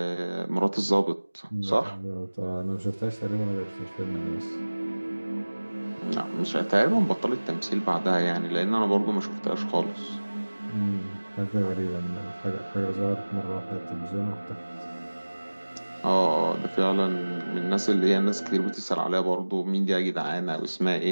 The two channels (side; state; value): both; inverted; correlation -1.00